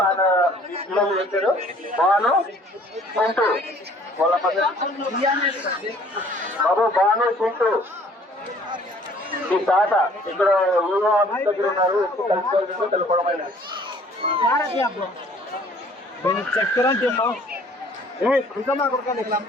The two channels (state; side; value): normal; both; correlation 0.55